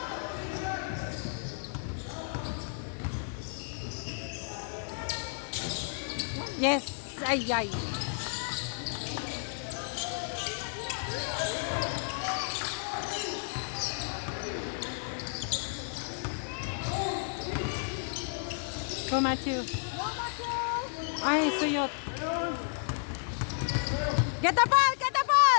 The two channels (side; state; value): right; silent; 56 dB below the other